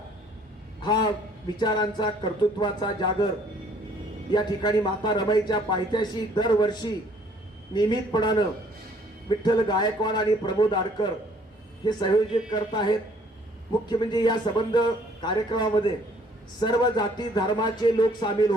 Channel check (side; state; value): both; normal; correlation 0.60